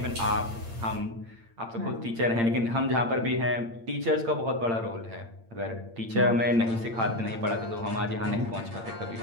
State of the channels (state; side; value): late; left; 8.8 ms